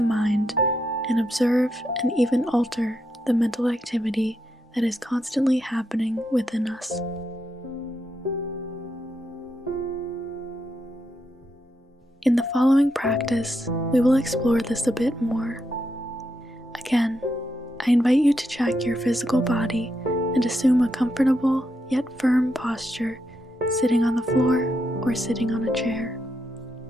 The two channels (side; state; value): both; normal; correlation 0.82